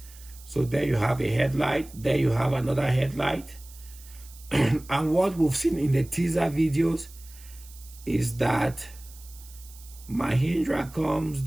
So there you have a headlight. There you have another headlight. And what we've seen in the teaser videos is that Mahindra comes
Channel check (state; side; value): noise; right; hiss, 21 dB below the sound